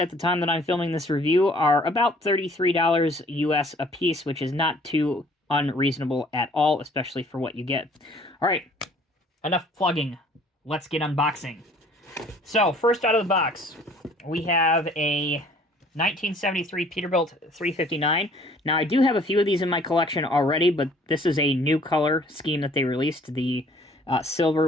the time that I'm filming this review, are about $33 US a piece, which is not too unreasonable at all, especially for what you get. All right, enough plugging. Let's get unboxing. So, first out of the box, we have a 1973 Peterbilt 359. Now, I do have a few of these in my collection already, but this is a new color scheme that they released, the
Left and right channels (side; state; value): both; normal; correlation 0.56